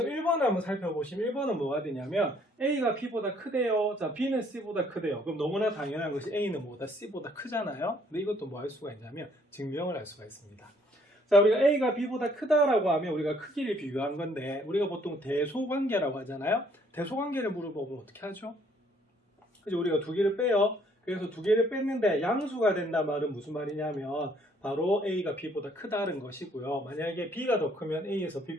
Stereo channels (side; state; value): both; normal; correlation 0.63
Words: 1번을 한번 살펴보시면 1번은 뭐가 되냐면 A가 B보다 크대요. 자, B는 C보다 크대요. 그럼 너무나 당연한 것이 A는 뭐보다 C보다 크잖아요. 근데 이것도 뭐 할 수가 있냐면 증명을 할 수가 있습니다. 자, 우리가 A가 B보다 크다라고 하면 우리가 크기를 비교한 건데 우리가 보통 대소관계라고 하잖아요. 대소관계를 물어보면 어떻게 하죠? 그죠? 우리가 두 개를 빼요. 그래서 두 개를 뺐는데 양수가 된단 말은 무슨 말이냐면 바로 A가 B보다 크다는 것이고요. 만약에 B가 더 크면 A에서 B